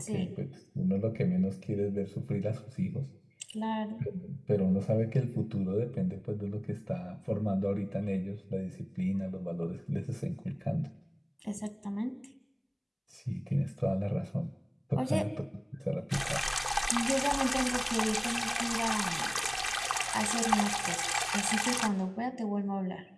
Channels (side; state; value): both; identical; correlation 1.00